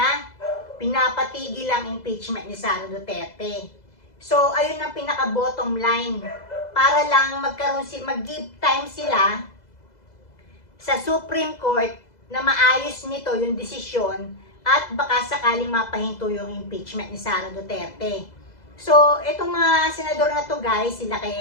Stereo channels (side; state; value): right; late; 2.0 ms